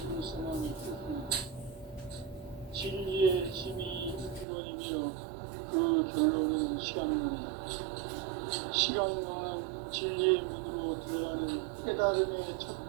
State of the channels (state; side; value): drops out; left; at 4.5 s